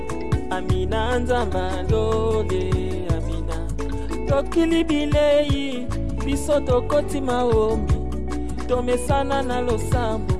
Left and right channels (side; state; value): both; identical; correlation 1.00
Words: Amina, Nzambalole, Amina. Tokili bilei, biso tokoti maombi. Tomesana na losambo.